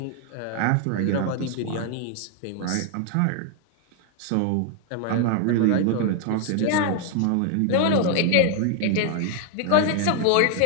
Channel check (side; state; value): both; different; correlation 0.00